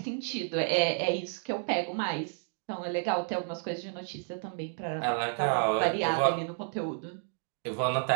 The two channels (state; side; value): silent; left; 57 dB below the other